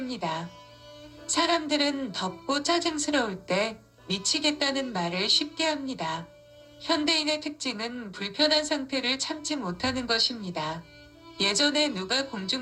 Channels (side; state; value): both; identical; correlation 1.00